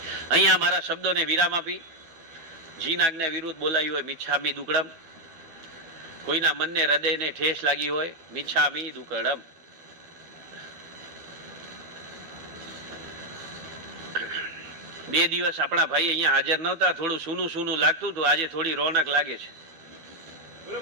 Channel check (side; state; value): left; late; 12 ms